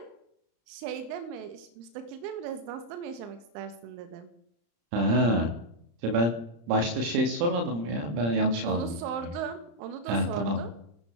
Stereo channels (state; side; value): late; left; 35 ms